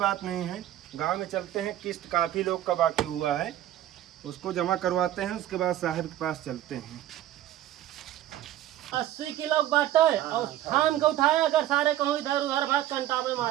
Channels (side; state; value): left; quieter; 13.0 dB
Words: नहीं है गांव में चलते हैं किस्त काफी लोग का बाकी हुआ है उसको जमा करवाते हैं उसके बाद साहब के पास चलते हैं। 80 किलो बाटे और थाम के उठाया अगर सारे कहूँ इधर उधर भाग कंटा में